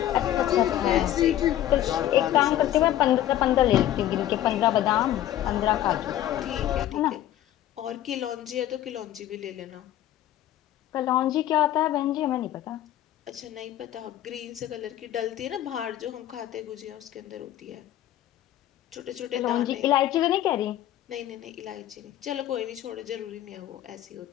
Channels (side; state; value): right; quieter; 12.8 dB